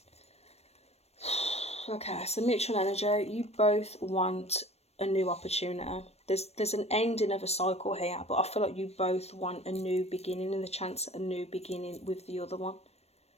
Okay, so mutual energy, you both want a new opportunity. There's an ending of a cycle here, but I feel like you both want a new beginning and the chance at a new beginning with the other one.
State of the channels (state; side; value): late; right; 0.31 ms